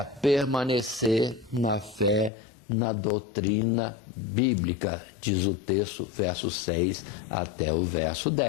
permanecer na fé, na doutrina bíblica, diz o texto, verso 6 até o verso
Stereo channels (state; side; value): drops out; right; at 2.3 s